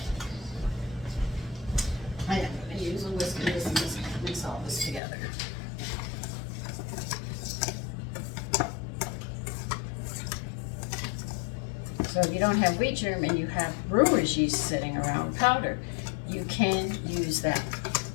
am gonna use a whisk and just mix all this together. So if you don't have wheat germ and you have brewer's yeast sitting around powder, you can use that.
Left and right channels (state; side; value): drops out; right; at 5.0 s